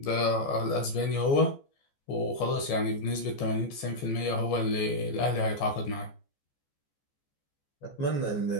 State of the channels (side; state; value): right; late; 14 ms